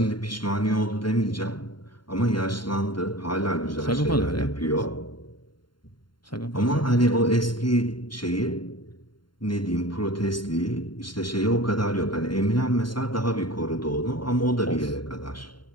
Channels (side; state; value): right; late; 0.72 ms